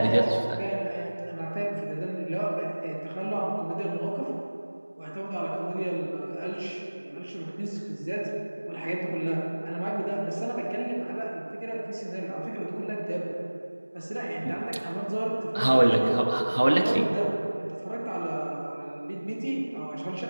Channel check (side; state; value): both; inverted; correlation -1.00